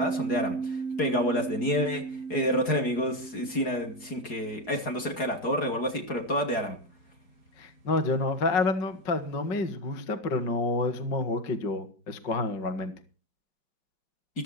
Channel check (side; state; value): right; late; 4.7 ms